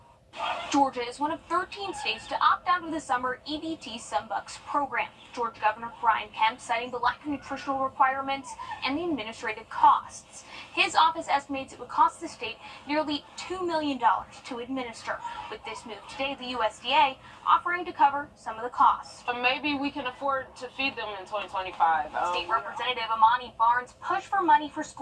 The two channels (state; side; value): identical; both; correlation 1.00